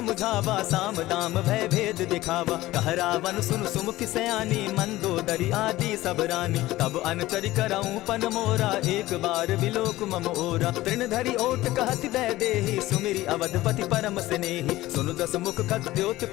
साम दाम भय भेद दिखावा। कह रावण सुन सुमुख सयानी मंदोदरी आदि सब रानी। तब अनचरि करऊं पन मोरा एक बार बिलोक मम ओरा। तृण धरि ओट कहत दय देहि सुमिरी अवधपति परम स्नेही। सुनु दस मुख खद्योत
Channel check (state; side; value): quieter; right; 17.0 dB